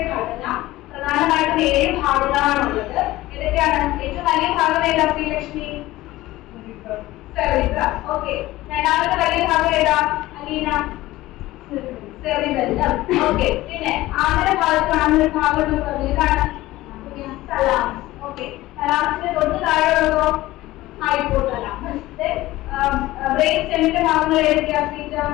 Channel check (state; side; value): quieter; right; 17.3 dB